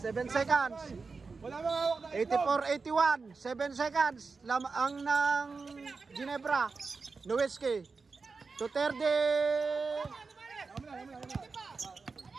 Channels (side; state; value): left; quieter; 4.5 dB